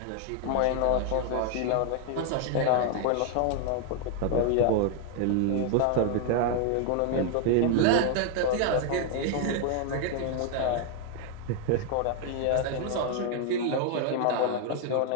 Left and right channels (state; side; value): different; both; correlation 0.00